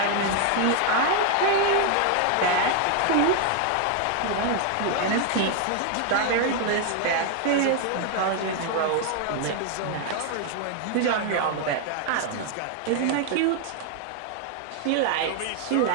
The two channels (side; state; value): both; different; correlation 0.00